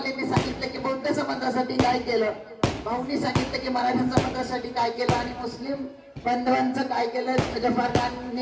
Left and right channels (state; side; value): identical; both; correlation 1.00